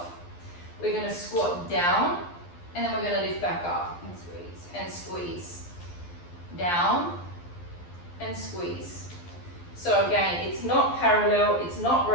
We're going to squat down, and then we're going to lift back up and squeeze, and squeeze. Down, and squeeze. So again, it's not parallel, it's not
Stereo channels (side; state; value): right; late; 12 ms